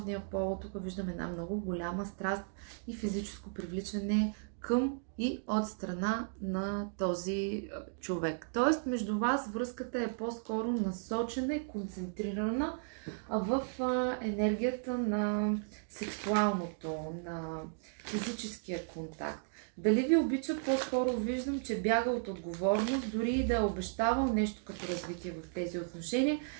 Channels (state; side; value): silent; left; digital silence